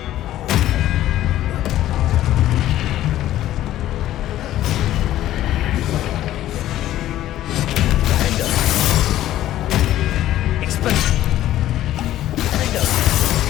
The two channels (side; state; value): right; quieter; 13.5 dB